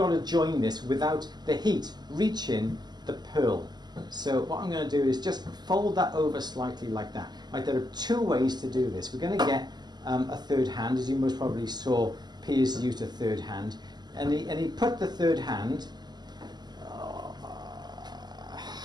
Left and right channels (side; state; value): left; late; 0.20 ms